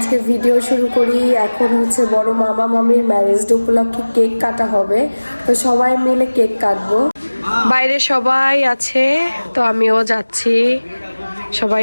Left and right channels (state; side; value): inverted; both; correlation -1.00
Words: ভিডিও শুরু করি। এখন হচ্ছে বড় মামা মামির ম্যারেজ ডে উপলক্ষে কেক কাটা হবে, তো সবাই মিলে কেক কাটবো। বাইরে সবাই আছে, তো আমিও যাচ্ছি, সবাই